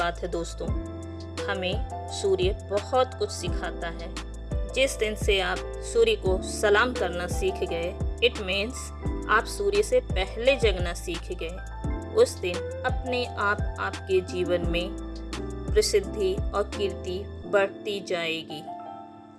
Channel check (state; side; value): identical; both; correlation 1.00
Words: है दोस्तों। हमें सूर्य बहुत कुछ सिखाता है। जिस दिन से आप सूर्य को सलाम करना सीख गए, इट मीन्स आप सूर्य से पहले जगना सीख गए। उस दिन अपने आप आपके जीवन में प्रसिद्धि और कीर्ति बढ़ती जाएगी।